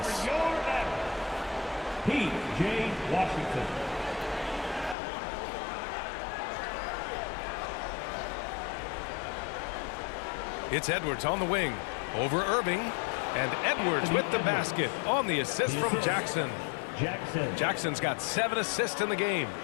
P.J. Washington. It's Edwards on the wing. Over Irving. And Edwards with the basket on the assist from Jackson. Jackson's got 7 assists in the game.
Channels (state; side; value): drops out; right; at 5.0 s